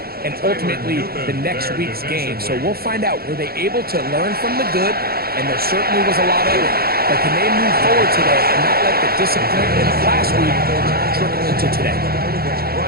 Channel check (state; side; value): late; left; 0.44 ms